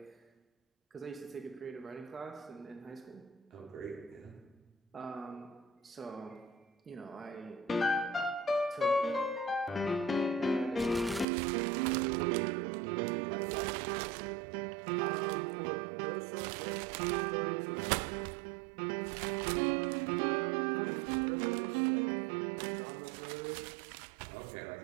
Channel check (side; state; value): left; drops out; at 11.2 s